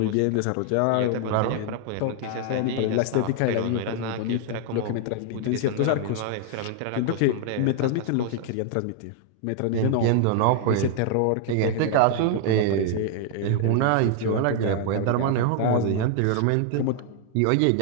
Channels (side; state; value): both; different; correlation 0.00